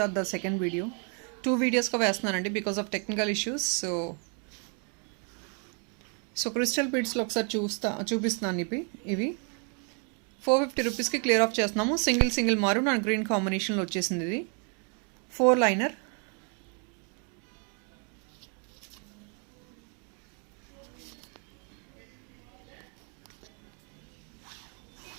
the second video. 2 videos ka వేస్తున్నానండి because of technical issues. So crystal beads లో ఒకసారి చూపిస్తున్నాను ఇవి 450 rupees కి clear of చేస్తున్నాము. Single maroon and green combination లో వచ్చేసింది. ఇది 4 లైనర్.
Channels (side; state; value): left; quieter; 38.7 dB